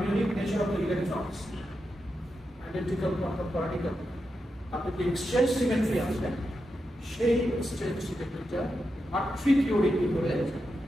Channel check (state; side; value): normal; both; correlation 0.87